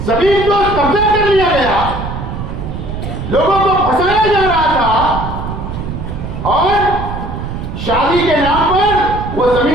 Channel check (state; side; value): noise; right; rumble, 6 dB below the sound